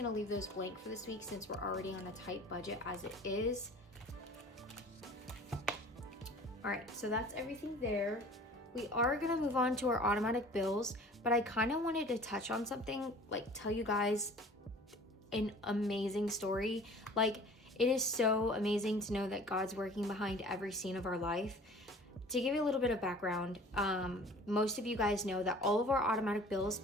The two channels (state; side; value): normal; both; correlation 0.46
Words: leave those blank for this week since we're already on a tight budget as it is. All right, so that's everything there. We are gonna move on to our automatic bills, but I kind of wanted to touch on something, like tell you guys an amazing story. Like, it is so amazing to know that God's working behind every scene of our life. To give you a little bit of background, most of you guys know that all of our automatic bills